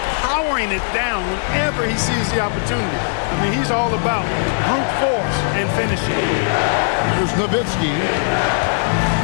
powering it down whenever he sees the opportunity. I mean, he's all about brute force and finishing. There's Nowitzki.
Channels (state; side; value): silent; right; digital silence